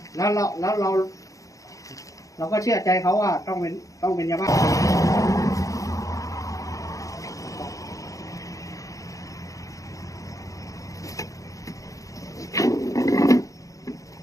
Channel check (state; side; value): late; right; 0.16 ms